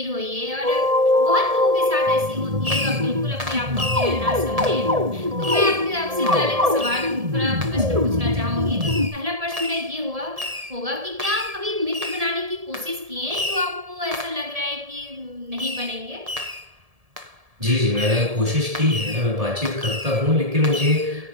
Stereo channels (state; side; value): late; left; 1.7 ms